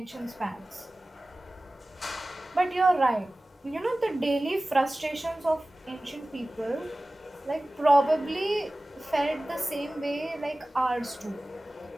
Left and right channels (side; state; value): both; normal; correlation 0.97